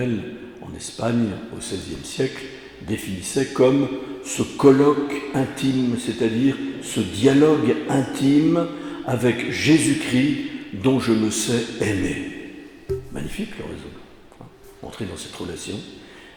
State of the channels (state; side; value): identical; both; correlation 1.00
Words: en Espagne au XVIe siècle, définissait comme ce colloque intime, c'est-à-dire ce dialogue intime avec Jésus-Christ dont je me sais aimé. Magnifique l'oraison. Entrer dans cette relation.